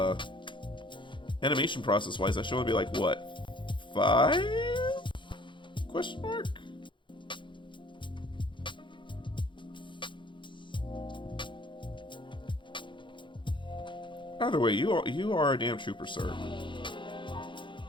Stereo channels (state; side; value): late; right; 0.23 ms